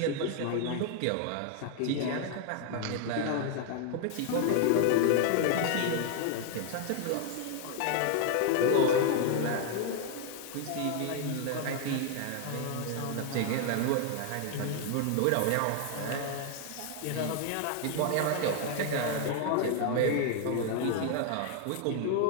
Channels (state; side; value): different; both; correlation 0.00